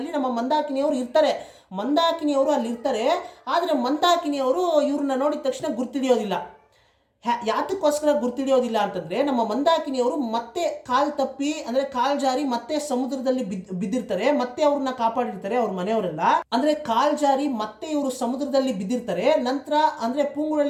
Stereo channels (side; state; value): both; identical; correlation 1.00